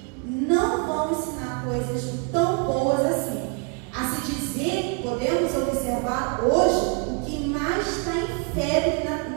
não vão ensinar coisas tão boas assim. A se dizer, podemos observar hoje, o que mais está em febre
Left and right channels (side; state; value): left; quieter; 36.1 dB